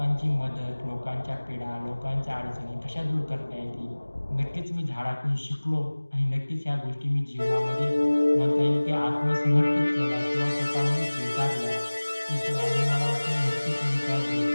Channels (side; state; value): both; inverted; correlation -1.00